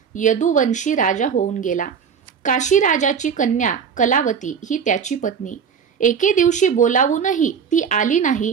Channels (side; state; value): left; quieter; 6.9 dB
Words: यदुवंशी राजा होऊन गेला. काशी राजाची कन्या कलावती ही त्याची पत्नी. एके दिवशी बोलावूनही ती आली